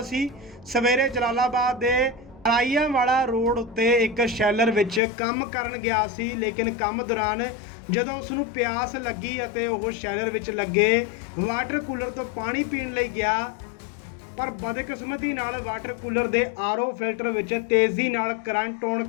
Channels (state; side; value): drops out; right; at 5.0 s